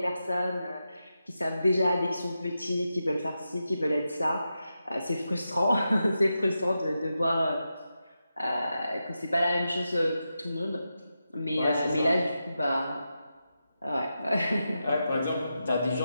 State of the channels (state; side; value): inverted; both; correlation -0.89